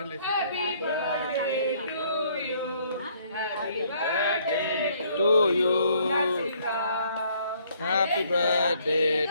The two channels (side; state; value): both; inverted; correlation -0.64